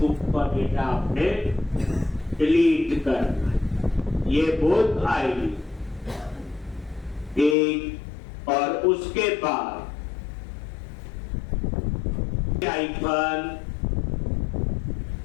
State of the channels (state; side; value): drops out; right; at 7.6 s